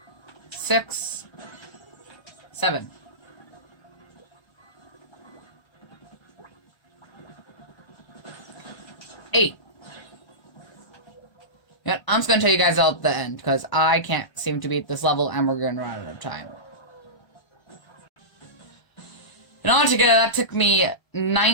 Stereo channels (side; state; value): right; late; 1.3 ms